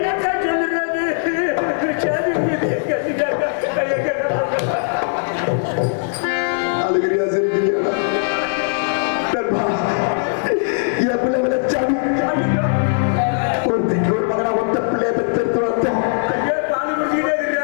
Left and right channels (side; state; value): right; silent; digital silence